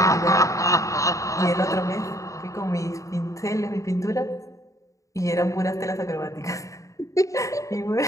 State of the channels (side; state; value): right; late; 0.16 ms